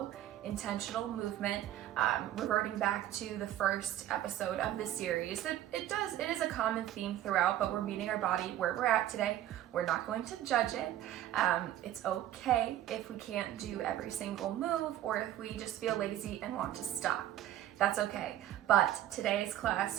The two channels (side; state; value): left; quieter; 12.8 dB